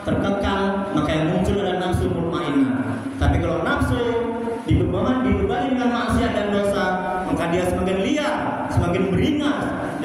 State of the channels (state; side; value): identical; both; correlation 1.00